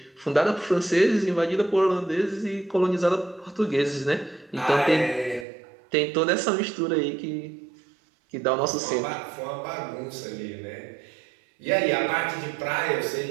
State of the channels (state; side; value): drops out; left; at 5.5 s